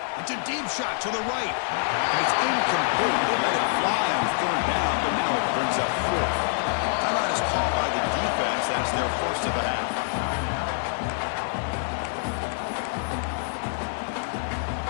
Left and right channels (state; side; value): silent; right; digital silence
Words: It's a deep shot to the right. And it's incomplete. They let it fly on 3rd down, but now it brings up 4th. Timeout is called by the defense. That's their first of the half.